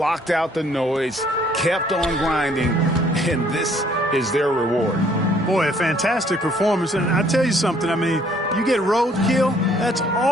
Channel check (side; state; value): both; normal; correlation 0.62